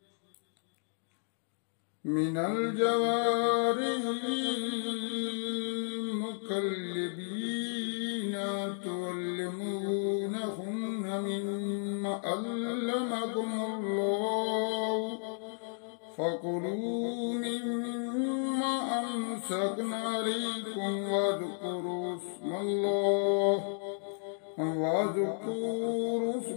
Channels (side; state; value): right; silent; digital silence